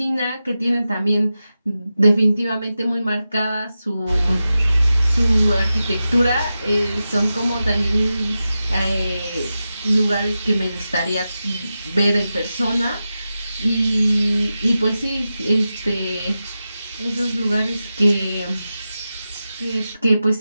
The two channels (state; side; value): inverted; both; correlation -0.92